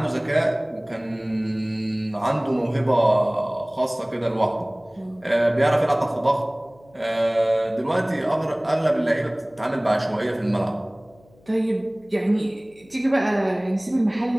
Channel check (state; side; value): noise; left; hum, 29 dB below the sound